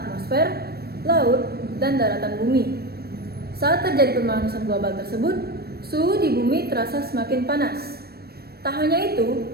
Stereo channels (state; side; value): late; left; 0.46 ms